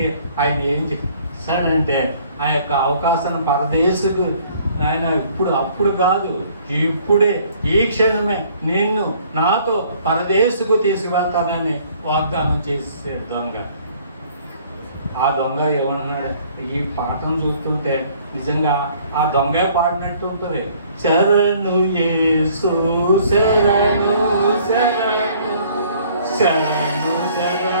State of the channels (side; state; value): both; inverted; correlation -0.58